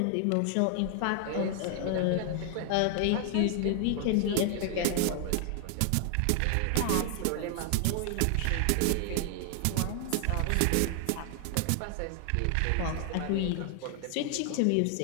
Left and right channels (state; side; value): different; both; correlation 0.00